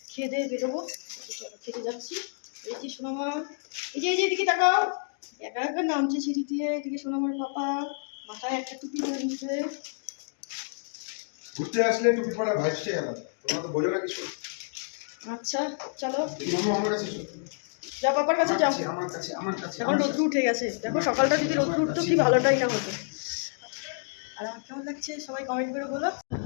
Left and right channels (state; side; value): silent; right; digital silence